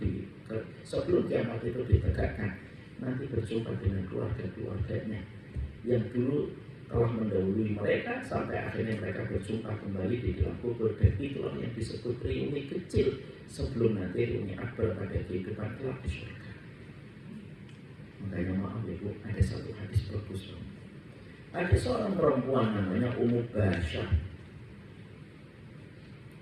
itu ditegakkan, nanti berjumpa dengan keluarga-keluarganya yang dulu telah mendahului mereka sampai akhirnya mereka berjumpa kembali di dalam kubur. Dan itulah yang disebut reuni kecil sebelum nanti reuni akbar pada kehidupan kelak di surga. Makanya maaf ya Bu, ada satu hadis bagus. Ada seorang perempuan namanya Ummu Basyah,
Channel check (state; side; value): identical; both; correlation 1.00